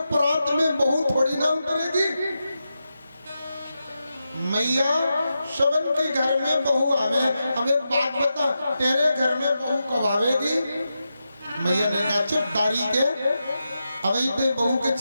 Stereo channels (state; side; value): inverted; both; correlation -0.89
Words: परात में बहू थोड़ी ना उतरेगी। मैया शवन के घर में बहू आवे, हमें बात बता तेरे घर में बहू कब आवेगी। मैया ने कहा चुप दारी के, अभी ते बहू के